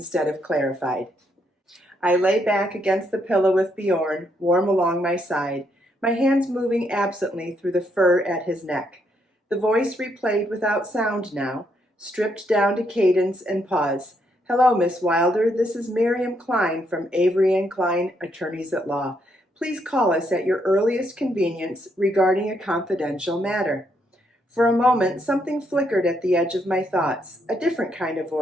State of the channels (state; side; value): normal; both; correlation 0.75